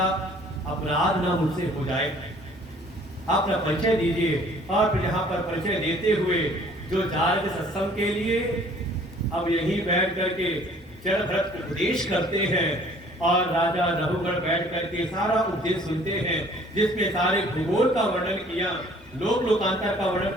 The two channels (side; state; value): both; normal; correlation 0.55